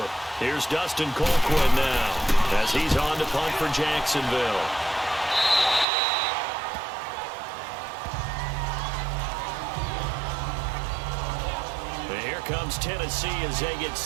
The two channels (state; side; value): drops out; left; at 5.9 s